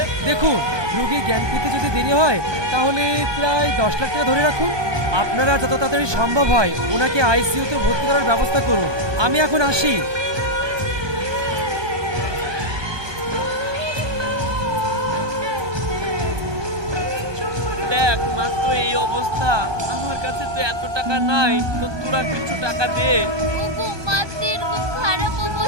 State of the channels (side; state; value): left; late; 1.2 ms